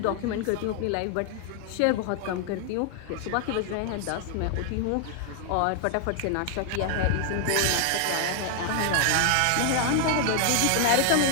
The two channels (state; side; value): different; both; correlation 0.00